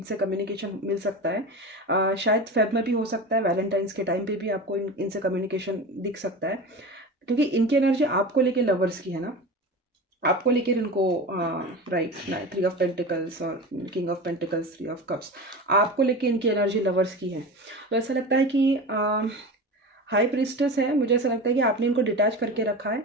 कम्युनिकेशन मिल सकता है। शायद फेब में भी हो सकता है, वैलेंटाइंस के टाइम पे भी आपको इनसे कम्युनिकेशन दिख सकता है, क्योंकि इनकी एनर्जी आपको लेके लवर्स की है ना। आपको लेकर इनको राइट, 3 ऑफ पेंटिकल्स और king of pentacles, 3 of cups, आपको लेके इनकी एनर्जी लवर्स की है। तो ऐसा लगता है कि हाई प्रिस्टेस है। मुझे ऐसा लगता है कि आपने इनको डिटैच करके रखा है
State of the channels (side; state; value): both; normal; correlation 0.29